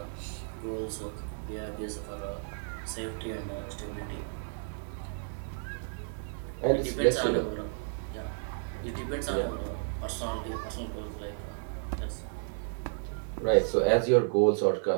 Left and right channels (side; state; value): left; silent; 56 dB below the other